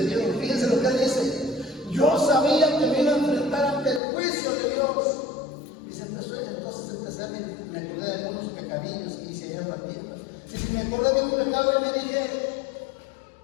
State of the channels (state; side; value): drops out; right; at 4.0 s